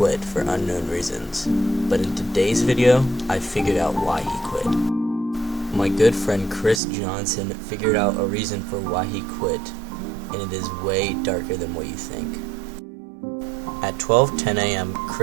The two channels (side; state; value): left; drops out; at 6.8 s